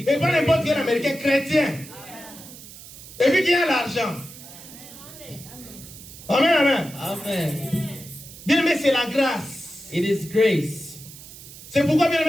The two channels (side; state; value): right; noise; hiss, 16 dB below the sound